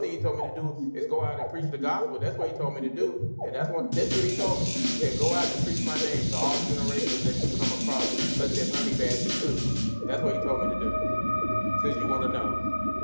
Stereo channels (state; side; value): inverted; both; correlation -1.00